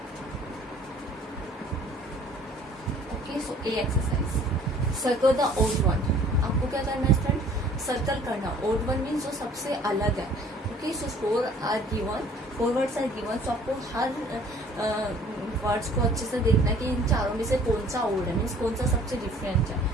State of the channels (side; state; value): both; normal; correlation 0.53